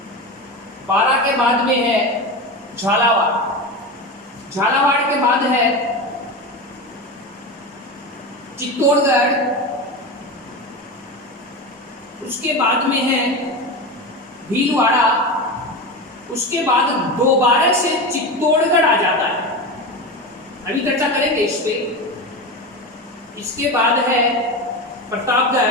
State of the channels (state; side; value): normal; both; correlation 0.22